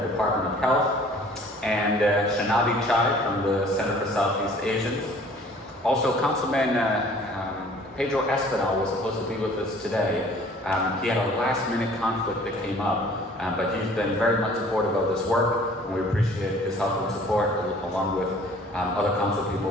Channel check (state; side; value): normal; both; correlation 0.52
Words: Department of Health, and Shanavi Chai from the Center for Southeast Asians. Also, Councilman Pedro Espinal was supposed to be with us today. He had a last-minute conflict that came up, but he's been very much supportive of this work, and we appreciate his help and support, along with other council